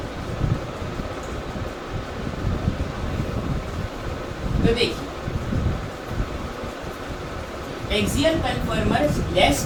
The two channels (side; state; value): both; identical; correlation 1.00